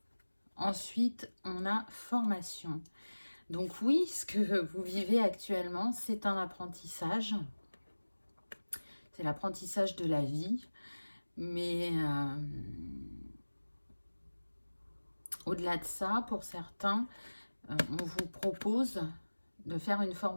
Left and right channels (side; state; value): both; inverted; correlation -1.00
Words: Ensuite, on a formation. Donc oui, ce que vous vivez actuellement, c'est un apprentissage. C'est l'apprentissage de la vie. Mais au-delà de ça, pour certains, on vous propose de faire une